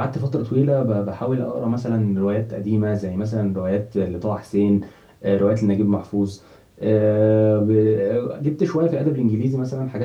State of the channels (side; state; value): both; identical; correlation 1.00